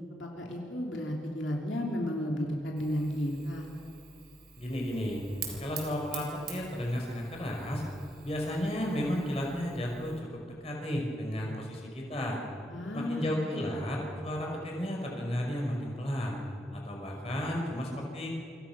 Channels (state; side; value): normal; both; correlation 0.79